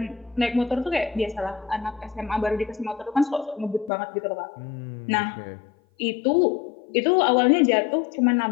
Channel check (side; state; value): right; drops out; at 3.9 s